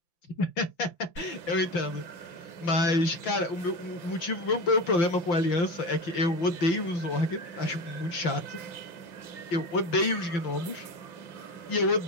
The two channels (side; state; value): right; late; 5.8 ms